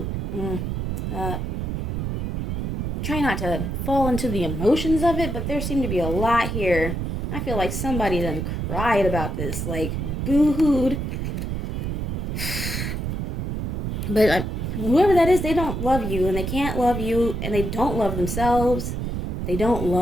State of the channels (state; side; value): noise; right; rumble, 2 dB below the sound